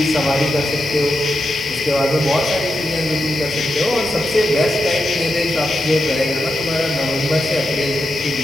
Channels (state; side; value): normal; both; correlation 0.87